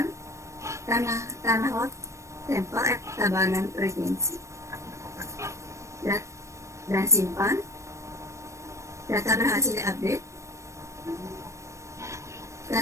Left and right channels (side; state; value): left; late; 0.15 ms